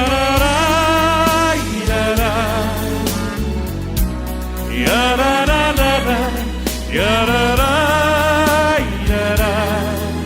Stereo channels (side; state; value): both; identical; correlation 1.00